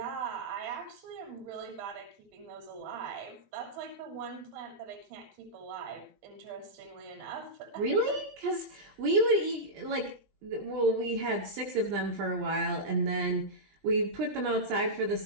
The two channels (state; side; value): late; left; 20 ms